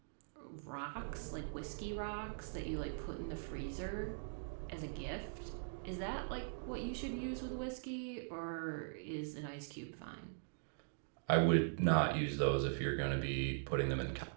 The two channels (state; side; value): silent; left; digital silence